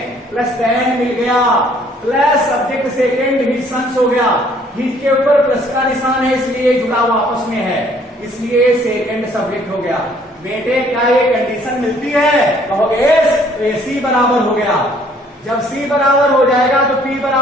प्लस देन मिल गया, प्लस सब्जेक्ट सेकंड ही सन्स हो गया, हिज के ऊपर प्लस का निशान है इसलिए जुड़ा हुआ आपस में है, इसलिए सेकंड सब्जेक्ट हो गया। बेटे क्या ये कंडीशन मिलती है? कहोगे तो सी बराबर हो गया। जब सी बराबर हो जाएगा तो पी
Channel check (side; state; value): both; normal; correlation 0.60